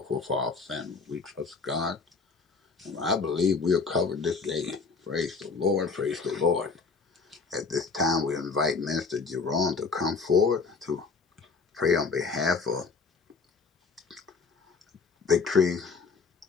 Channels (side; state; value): right; quieter; 4.7 dB